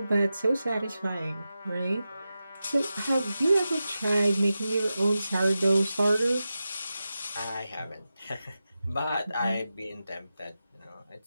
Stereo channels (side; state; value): both; inverted; correlation -0.92